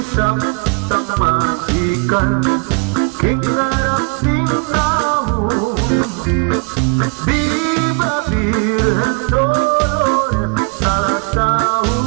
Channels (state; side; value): quieter; left; 35.3 dB